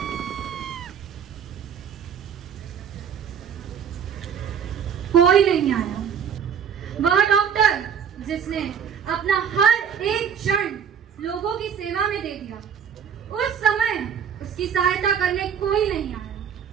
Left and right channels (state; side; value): quieter; left; 7.9 dB